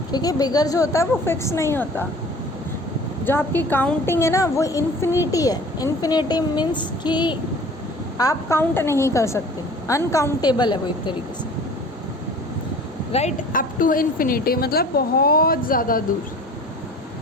क्योंकि बिगर जो होता है वो फिक्स नहीं होता। जो आपकी काउंटिंग है ना वो इन्फिनिटी है। इन्फिनिटी मीन्स कि आप काउंट नहीं कर सकते, अनकाउंटेबल है वो एक तरीके से, राइट। अप टू इन्फिनिटी मतलब बहुत ज़्यादा दूर।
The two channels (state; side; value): normal; both; correlation 0.45